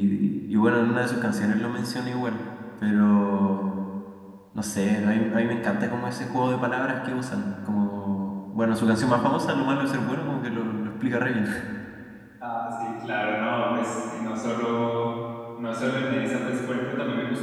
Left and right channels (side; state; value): both; identical; correlation 1.00